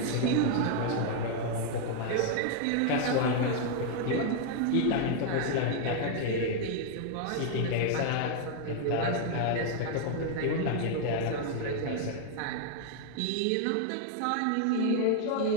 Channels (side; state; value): both; different; correlation 0.00